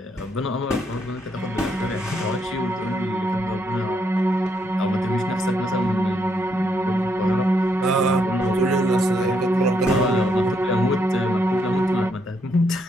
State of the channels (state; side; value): normal; both; correlation 0.76